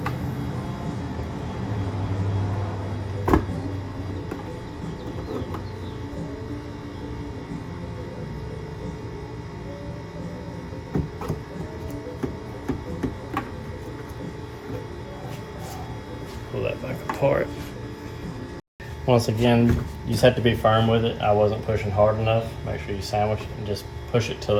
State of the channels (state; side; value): identical; both; correlation 1.00